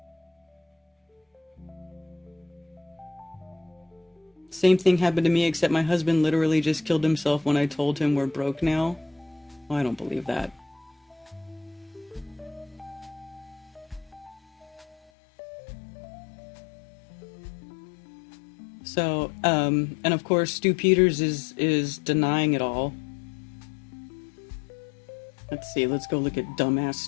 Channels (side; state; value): right; drops out; at 15.0 s